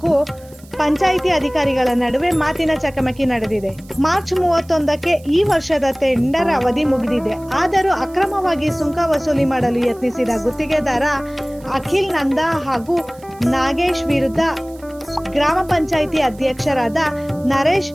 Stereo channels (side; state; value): right; noise; hiss, 26 dB below the sound